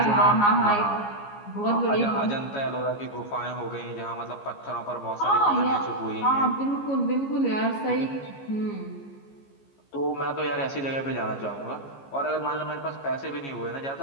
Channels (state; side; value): late; right; 15 ms